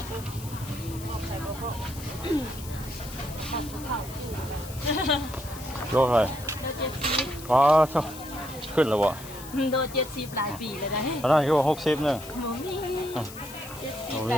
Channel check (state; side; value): noise; left; hiss, 15 dB below the sound